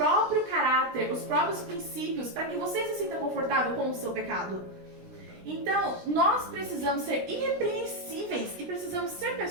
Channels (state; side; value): late; left; 16 ms